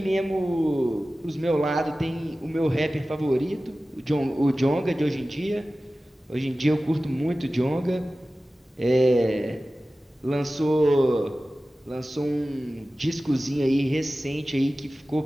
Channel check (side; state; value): both; normal; correlation 0.96